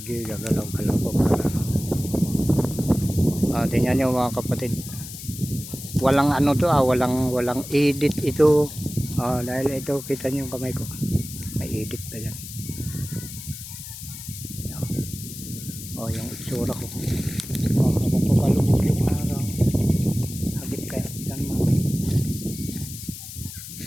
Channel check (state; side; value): noise; left; hiss, 11 dB below the sound